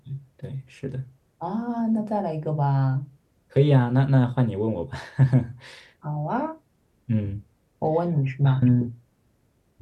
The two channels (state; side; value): identical; both; correlation 1.00